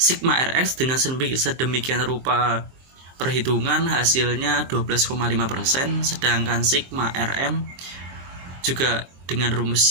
RX dengan sedemikian rupa perhitungan hasilnya 12,5%, sedangkan sigma RM juga dengan rumus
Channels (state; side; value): late; left; 23 ms